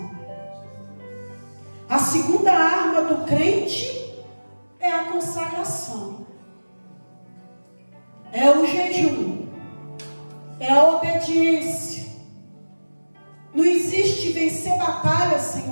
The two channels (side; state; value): both; inverted; correlation -1.00